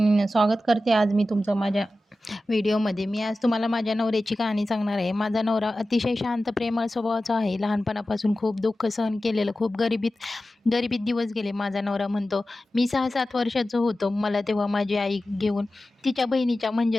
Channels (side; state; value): both; normal; correlation 0.94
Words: स्वागत करते आज मी तुमचं माझ्या व्हिडिओमध्ये. मी आज तुम्हाला माझ्या नवऱ्याची कहाणी सांगणार आहे. माझा नवरा अतिशय शांत, प्रेमळ स्वभावाचा आहे. लहानपणापासून खूप दुःख सहन केलेलं, खूप गरिबीत दिवस गेले. माझा नवरा म्हणतो, मी 6-7 वर्षाचं होतो. मला तेव्हा माझी आई घेऊन तिच्या बहिणीच्या